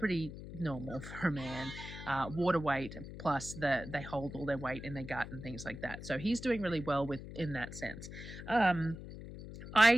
normal for a man. Water weight, plus they hold all their weight in their gut and things like that. So he's doing really well in that sense. I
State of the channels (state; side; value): noise; left; hum, 11 dB below the sound